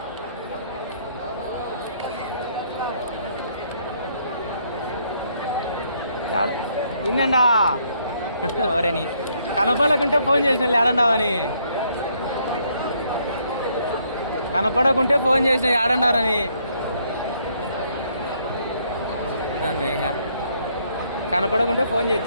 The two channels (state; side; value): inverted; both; correlation -0.69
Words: ఇన్నండా ఎవరని కనపడకుంటే ఫోన్ చేసిన ఏడండావని కనపడకుంటే ఫోన్ చేసిన ఏడన్నారని ఇంకా కనపడకుంటే ఫోన్